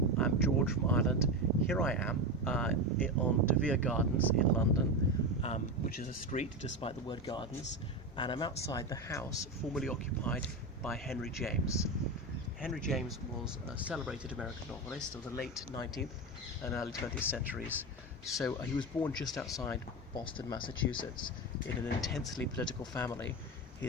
I'm George from Ireland. Here I am on De Vere Gardens in London, which is a street despite the word gardens, and I'm outside the house formerly occupied by Henry James. Henry James was a celebrated American novelist of the late 19th and early 20th centuries. So he was born just outside Boston, Massachusetts, in an intensely political family.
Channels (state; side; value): normal; both; correlation 0.18